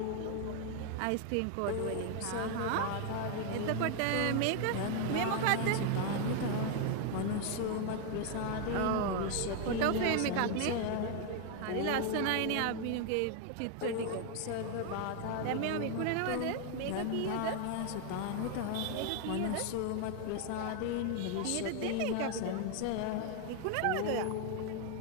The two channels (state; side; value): different; both; correlation 0.01